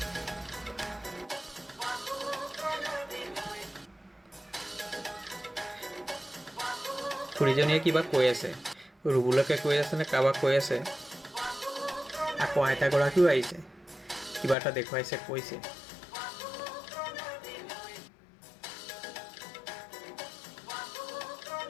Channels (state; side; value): drops out; right; at 14.6 s